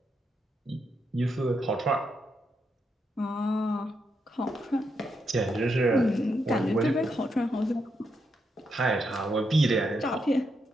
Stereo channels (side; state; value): both; normal; correlation 0.81